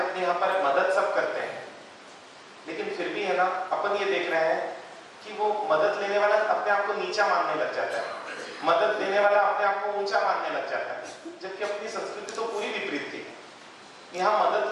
यहाँ पर मदद सब करते हैं, लेकिन फिर भी है ना, अपन ये देख रहे हैं कि वो मदद लेने वाला अपने आप को नीचा मानने लग जाता है, मदद देने वाला अपने आप को ऊंचा मानने लग जाता है, जबकि अपनी संस्कृति तो पूरी विपरीत थी। यहाँ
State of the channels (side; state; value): both; identical; correlation 1.00